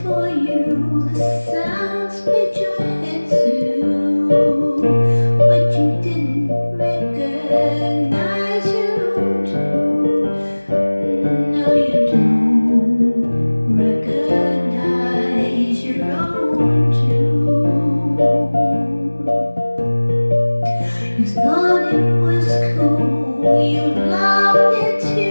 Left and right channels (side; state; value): both; inverted; correlation -1.00